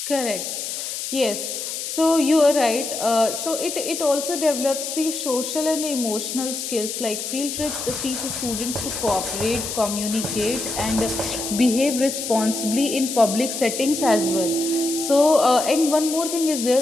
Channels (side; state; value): left; noise; hiss, 5 dB below the sound